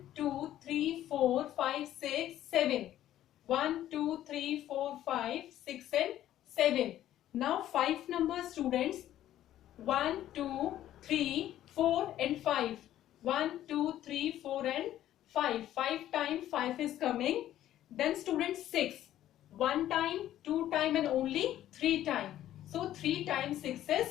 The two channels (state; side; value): quieter; right; 12.6 dB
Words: 2, 3, 4, 5, 6, 7. 1, 2, 3, 4, 5, 6 and 7. Now 5 numbers students. 1, 2, 3, 4 and 5. 1, 2, 3, 4 and 5. 5 times 5 is coming. Then students 6. 1 time, 2 time and only 3 time. So 3 times 6